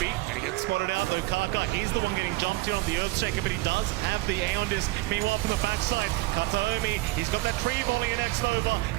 and he gets spotted out though. Kaka, he's the one getting jumped here on the Earthshaker, but he does have the Aeon Disc. Meanwhile, from the backside, Kataomi, he's got that tree volley in X-Nova.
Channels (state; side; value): quieter; left; 19.9 dB